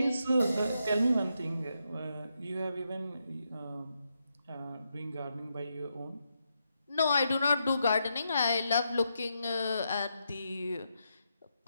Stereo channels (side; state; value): both; inverted; correlation -0.82